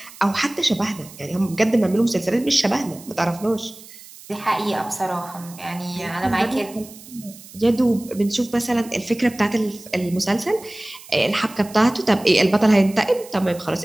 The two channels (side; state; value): right; noise; hiss, 19 dB below the sound